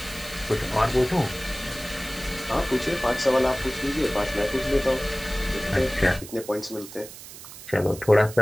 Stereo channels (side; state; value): right; noise; hiss, 15 dB below the sound